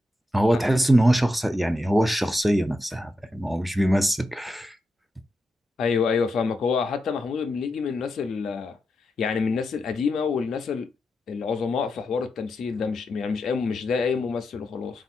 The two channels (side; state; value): both; normal; correlation 0.87